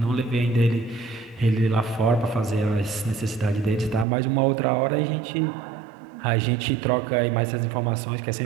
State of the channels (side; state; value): left; drops out; at 4.0 s